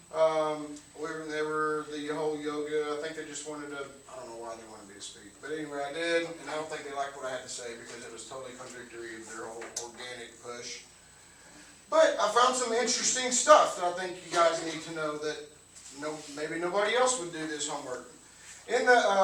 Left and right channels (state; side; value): identical; both; correlation 1.00